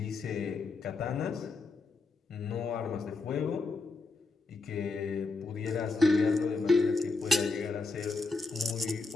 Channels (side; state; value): right; quieter; 3.8 dB